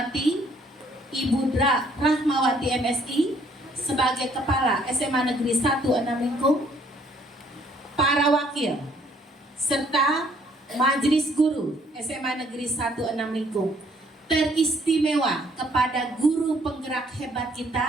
Ibu Dra Rahmawati MSI sebagai Kepala SMA Negeri 1 Enam Lingkung, para wakil serta Majelis Guru SMA Negeri 1 Enam Lingkung, teristimewa kepada guru penggerak hebat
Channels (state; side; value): normal; both; correlation 0.64